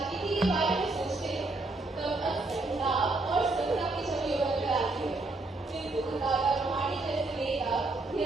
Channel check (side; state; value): left; quieter; 3.1 dB